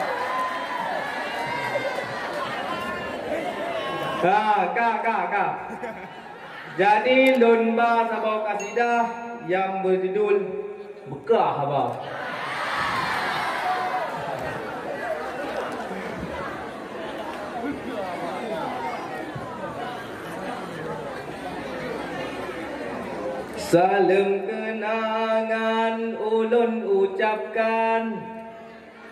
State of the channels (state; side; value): identical; both; correlation 1.00